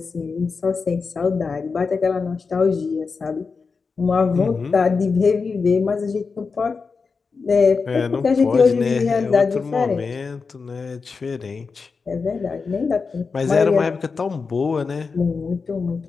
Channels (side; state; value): right; quieter; 4.8 dB